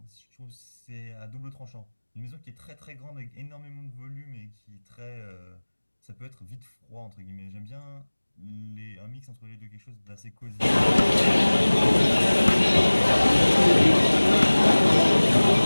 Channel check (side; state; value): both; inverted; correlation -1.00